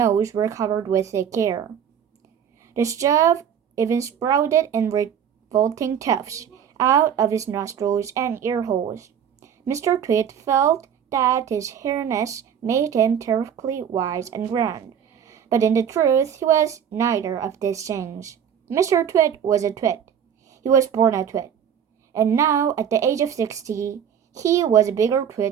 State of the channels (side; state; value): left; quieter; 8.5 dB